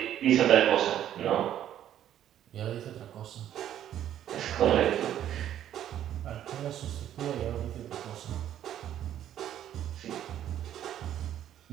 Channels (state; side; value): quieter; left; 11.1 dB